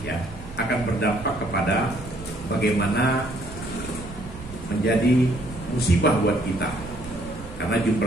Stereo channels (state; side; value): noise; right; rumble, 15 dB below the sound